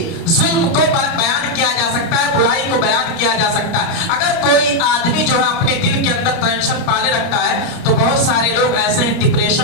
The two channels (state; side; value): late; right; 30 ms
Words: ظلم کو بیان کیا جا سکتا ہے, برائی کو بیان کیا جا سکتا ہے. اگر کوئی آدمی جو ہے اپنے دل کے اندر ٹینشن پالے رکھتا ہے تو بہت سارے لوگ ایسے ہیں